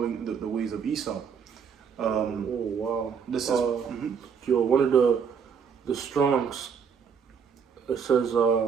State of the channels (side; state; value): left; quieter; 6.7 dB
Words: the ways of Esau. Oh wow! This is yo, one of the Strongs. It says